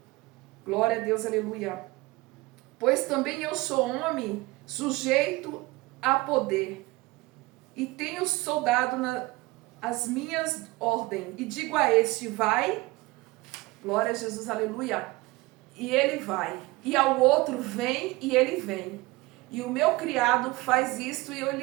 Glória a Deus, aleluia. Pois também eu sou homem sujeito a poder, e tenho soldado as minhas ordens, e digo a este, vai, glória a Jesus, aleluia, e ele vai, e ao outro, vem, e ele vem, e o meu criado faz isto, e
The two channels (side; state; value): left; quieter; 21.5 dB